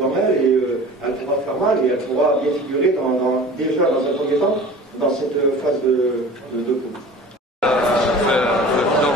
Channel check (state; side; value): normal; both; correlation 0.41